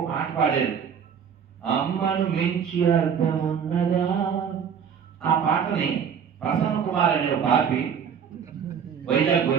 పాట పాడారు, అమ్మను మించి అర్థం ఉన్నదా. ఆ పాటని ప్రసన్న కుమార్ అనే బాపి వైజాగ్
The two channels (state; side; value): quieter; left; 7.4 dB